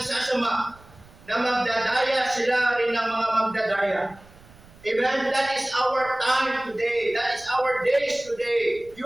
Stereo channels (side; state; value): right; noise; rumble, 24 dB below the sound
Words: sasama, na magdadaya sila rin ng mga magdadaya. Amen? That is our time today. That is our days today.